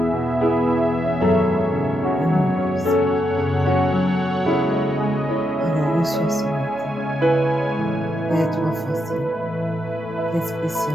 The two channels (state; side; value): normal; both; correlation 0.83